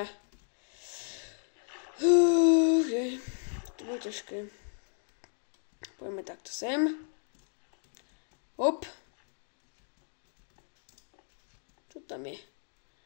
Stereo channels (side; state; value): right; silent; digital silence